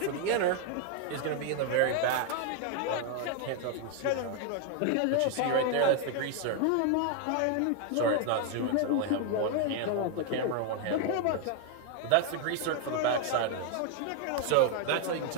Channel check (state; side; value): different; both; correlation 0.01